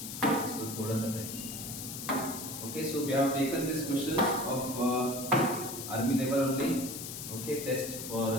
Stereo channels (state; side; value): noise; left; hiss, 8 dB below the sound